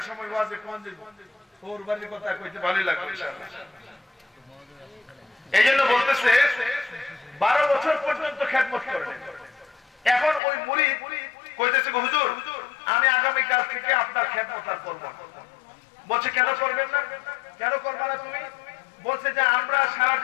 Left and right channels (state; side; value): drops out; right; at 10.4 s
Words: সময় ওয়াজে কোন যে ওর বাড়ির কথা কইতে ভালোই লাগবে ইনশাআল্লাহ। এইজন্য বলতেছে 12 বছর পর্যন্ত খেদমত করেন। এখন ওই মুরিদ কইতেছে, হুজুর আমি আগামী কাল থেকে আপনার খেদমত আর করব না। বলছে কেন করবেন না? কেন করবে না তুমি? বলছে যে আমরা সারা